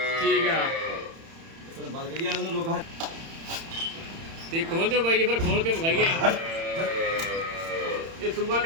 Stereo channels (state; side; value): late; left; 30 ms